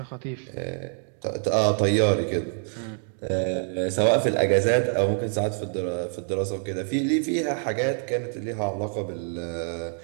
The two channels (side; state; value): left; silent; 61 dB below the other